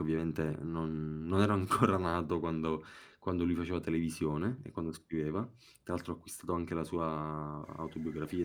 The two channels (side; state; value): both; identical; correlation 1.00